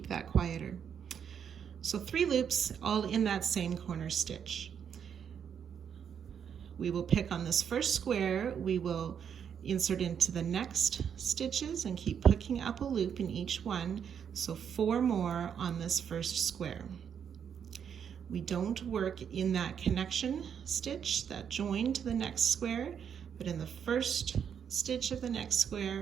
that quieter. So 3 loops all in that same corner stitch. We will pick on this first square, we will insert into the next stitches and keep picking up a loop in each one, so 4 more on this first square. We don't work in that connection stitch, that join to the next square, but in the first stitch of the next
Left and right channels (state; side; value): quieter; left; 7.9 dB